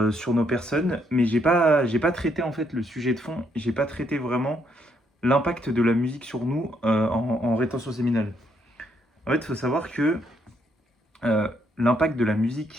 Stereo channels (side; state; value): both; normal; correlation 0.73